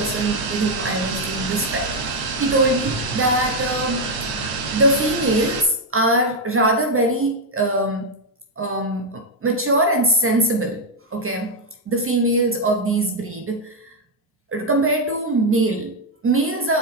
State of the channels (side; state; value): both; normal; correlation 0.02